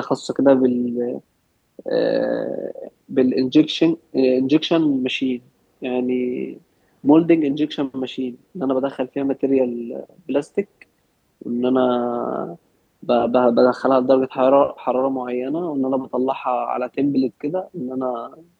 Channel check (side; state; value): both; identical; correlation 1.00